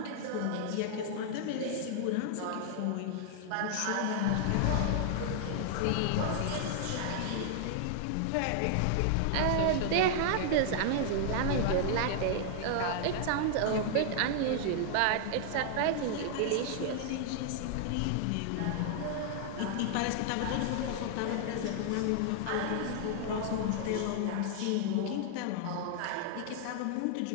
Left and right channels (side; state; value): both; different; correlation -0.01